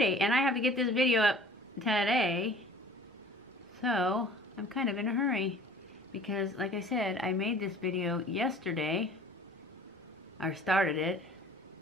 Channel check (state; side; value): normal; both; correlation 0.47